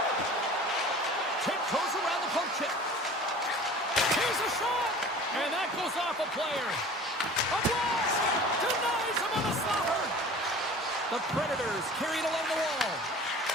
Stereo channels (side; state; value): both; normal; correlation 0.43